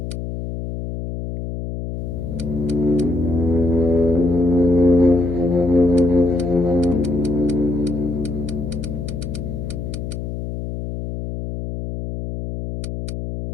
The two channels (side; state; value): left; noise; hum, 6 dB below the sound